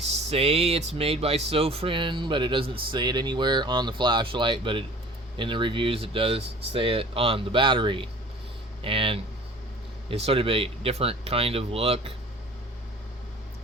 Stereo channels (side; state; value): both; normal; correlation 0.46